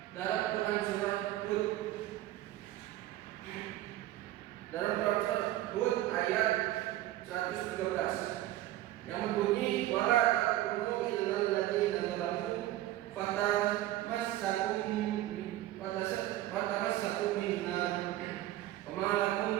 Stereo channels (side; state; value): left; quieter; 14.7 dB